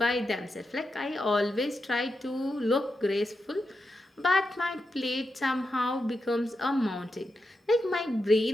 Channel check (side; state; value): both; normal; correlation 0.87